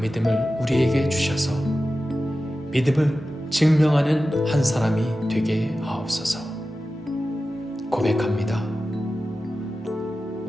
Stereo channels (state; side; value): normal; both; correlation 0.94